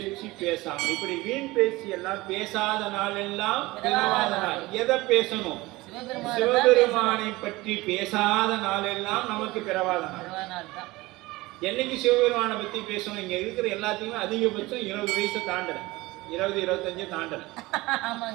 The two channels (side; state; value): left; quieter; 20.5 dB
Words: பேசாமல், இப்படி வீண் பேச்சு எல்லாம் பேசாத நாள் எல்லாம் பிறவாத நாள். எதை பேசணும்? சிவபெருமானை பற்றி பேசாத நாள் எல்லாம் நமக்கு பிறவாத நாள். என்னைக்கு சிவபெருமானை பத்தி பேசணும்? இங்க இருக்கிற எல்லாத்தையுமே அதிகபட்சம் 20 வயசு தாண்டல, 20-25 தாண்டல.